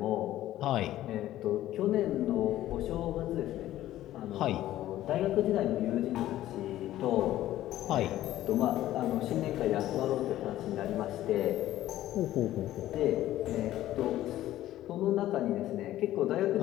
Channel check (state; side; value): quieter; right; 14.0 dB